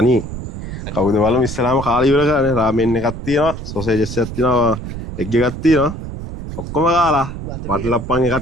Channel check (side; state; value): right; noise; rumble, 8 dB below the sound